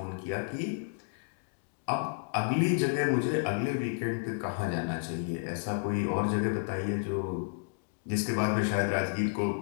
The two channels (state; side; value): silent; right; digital silence